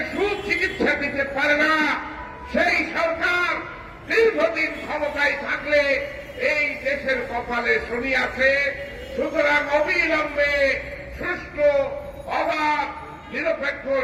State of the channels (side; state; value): both; identical; correlation 1.00